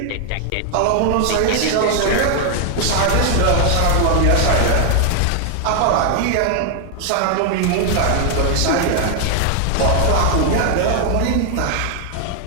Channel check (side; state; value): both; different; correlation 0.00